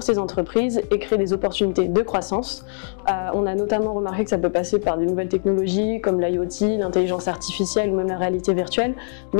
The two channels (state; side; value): silent; right; digital silence